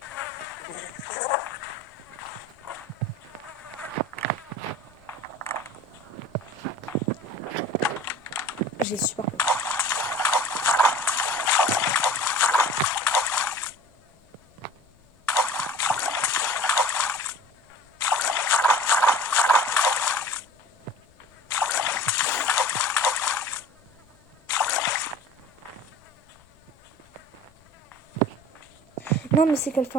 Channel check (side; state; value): left; noise; rumble, 30 dB below the sound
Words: J'ai super peur. Non, mais c'est qu'elle fait